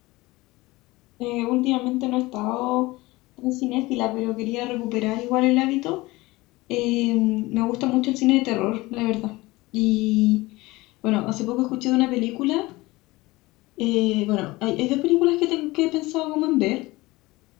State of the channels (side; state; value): right; quieter; 20.7 dB